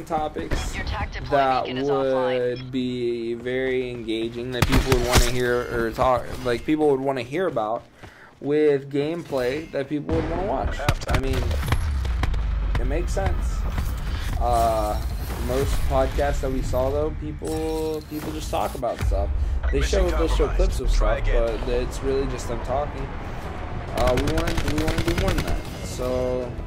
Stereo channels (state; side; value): identical; both; correlation 1.00